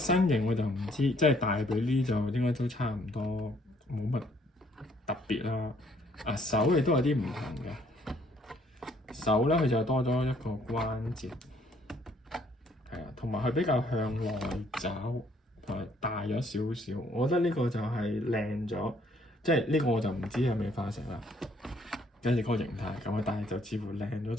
形我就唔知，即係大髀呢就應該都差唔多，冇乜特別啦。啊手亦都有啲唔同嘅。手咧佢就多咗一個關節，係啊，同埋佢比較向內找，同埋大咗少少。我覺得呢個就係靚咗，即係呢個我就唔知係咪化石啦。跟住嗰個形態咁啊，但係就似乎靚咗，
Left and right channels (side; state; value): both; normal; correlation 0.65